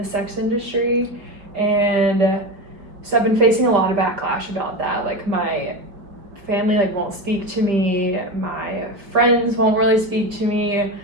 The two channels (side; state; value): left; late; 4.6 ms